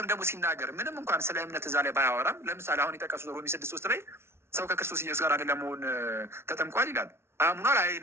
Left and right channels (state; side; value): late; left; 0.12 ms